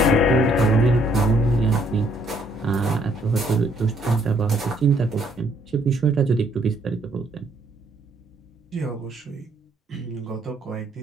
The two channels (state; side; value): normal; both; correlation 0.67